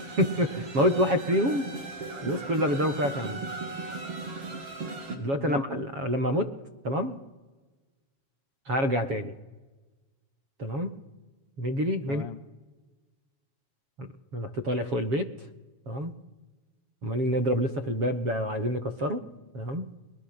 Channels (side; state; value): left; late; 7.2 ms